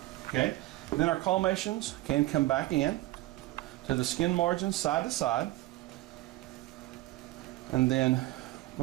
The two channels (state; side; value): quieter; left; 17.8 dB